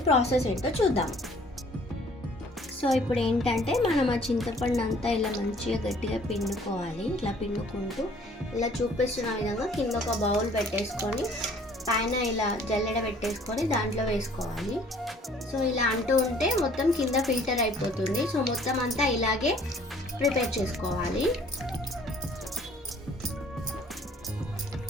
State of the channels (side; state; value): both; normal; correlation 0.56